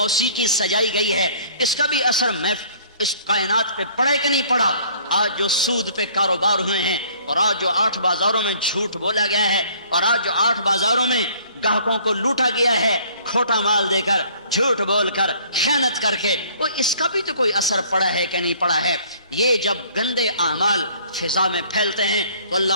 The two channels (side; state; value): both; inverted; correlation -0.56